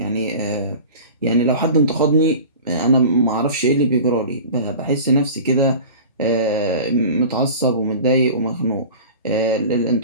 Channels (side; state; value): both; inverted; correlation -0.37